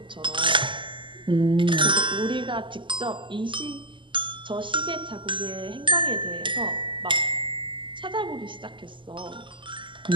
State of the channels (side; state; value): left; late; 0.24 ms